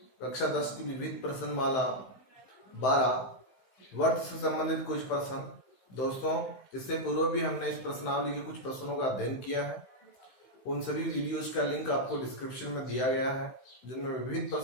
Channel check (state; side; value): late; right; 15 ms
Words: कक्षा 10 की विविध प्रश्नमाला 12 वर्त से संबंधित कुछ प्रश्न। दोस्तों, इससे पूर्व भी हमने इस प्रश्नावली के कुछ प्रश्नों का अध्ययन किया है। उन सभी वीडियोज का लिंक आपको डिस्क्रिप्शन में दिया गया है, जिनमें विविध